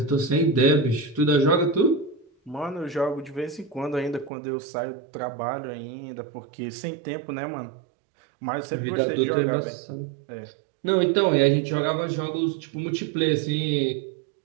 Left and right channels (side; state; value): left; drops out; at 4.3 s